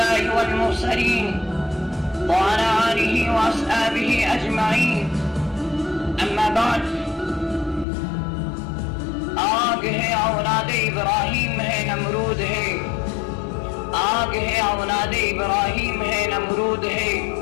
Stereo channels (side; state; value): right; drops out; at 7.9 s